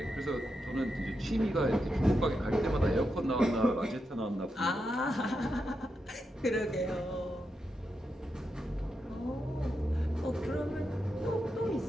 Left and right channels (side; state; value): both; normal; correlation 0.86